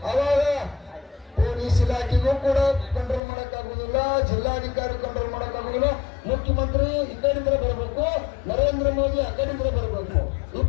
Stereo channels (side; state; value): right; drops out; at 3.2 s